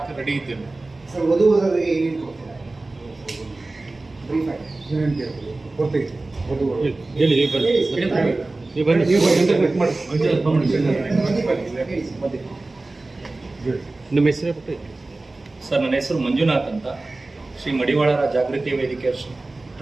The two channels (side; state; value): left; quieter; 3.1 dB